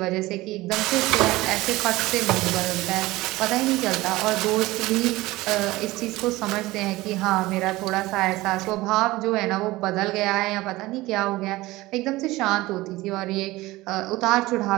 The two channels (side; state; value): left; quieter; 19.2 dB